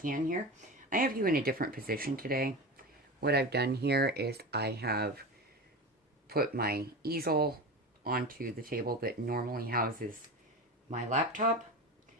here. I have you in a different position today. What I've done here is I have put my easel onto the table that normally houses my laptop,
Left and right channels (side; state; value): both; normal; correlation 0.27